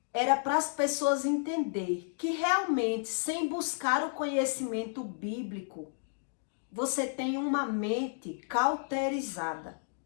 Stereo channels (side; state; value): right; silent; digital silence